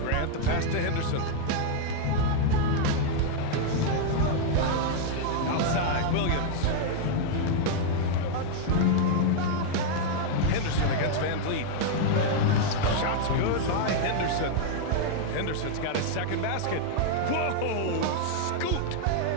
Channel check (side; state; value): both; different; correlation 0.00